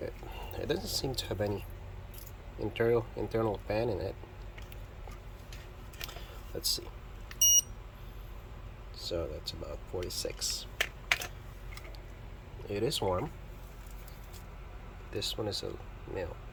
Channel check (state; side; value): identical; both; correlation 1.00